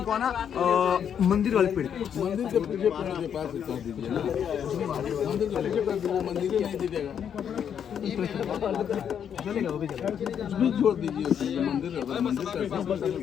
को आना मंदिर वाले पेड़। मंदिर के पूजे पेड़ के पास कर दीजिए ना, मंदिर के पूजे कर दीजिए, मंदिर ही नहीं दीजिएगा, चलेगा वो भी चलेगा। उसमें छोड़ दीजिए। मंदिर मंदिर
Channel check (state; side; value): quieter; right; 8.4 dB